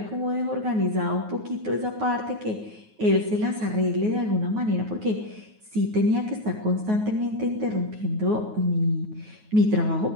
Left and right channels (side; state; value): left; late; 9.4 ms